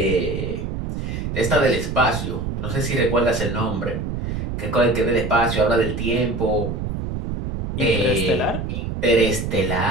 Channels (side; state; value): right; noise; rumble, 4 dB below the sound